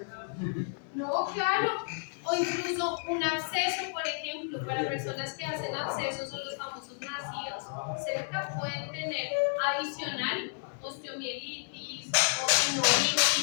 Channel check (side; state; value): right; silent; 57 dB below the other